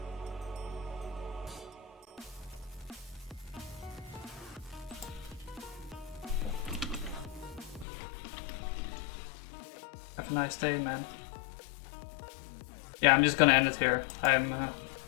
Have a nice day, man. Yeah, I'm just gonna end it here. I'm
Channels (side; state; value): right; drops out; at 7.9 s